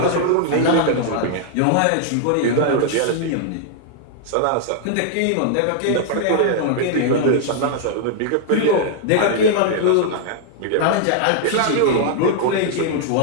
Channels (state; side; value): different; both; correlation -0.01